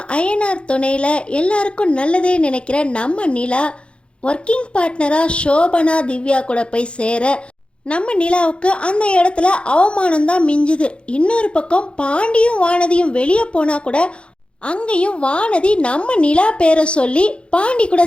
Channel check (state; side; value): late; right; 0.057 ms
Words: ஐஎன்ஆர் துணையில் எல்லாருக்கும் நல்லதே நினைக்கிற நம்ம நிலா ஒர்க்கிங் பார்ட்னராக சோபனா திவ்யா கூட போய் சேர நம்ம நிலாவுக்கு அந்த இடத்துல அவமானம்தான் மிஞ்சுது. இன்னொரு பக்கம் பாண்டியும் வானதியும் வெளியே போனால் கூட அங்கேயும் வானதி நம்ம நிலா பேரை சொல்லி பாண்டி கூட